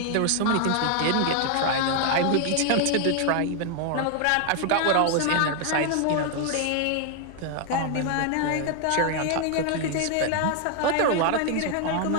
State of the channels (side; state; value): both; different; correlation 0.00